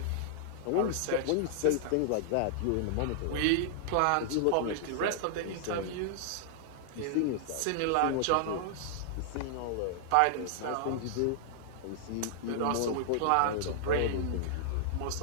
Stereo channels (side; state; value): both; different; correlation -0.01